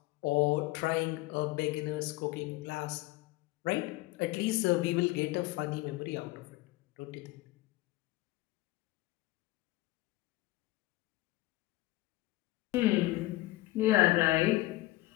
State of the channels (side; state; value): right; quieter; 18.7 dB